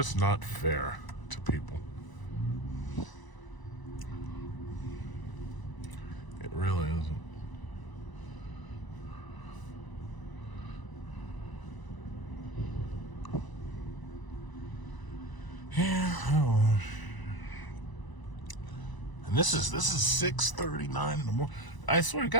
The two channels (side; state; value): right; late; 1.0 ms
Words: not fair to people. It really isn't. Yeah, I don't know. And this is 6:39 in the morning. I swear to